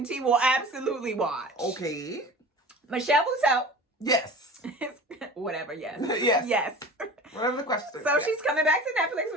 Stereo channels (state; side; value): normal; both; correlation 0.38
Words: T will absolutely watch. Okay. Michelle Buteau. Yes. Whatever, yes. Yes. Whatever the question is. So she's coming back to Netflix